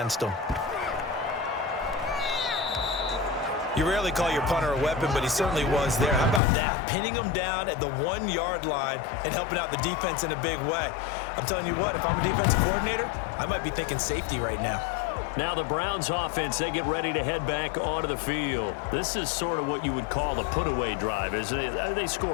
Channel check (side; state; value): right; drops out; at 6.4 s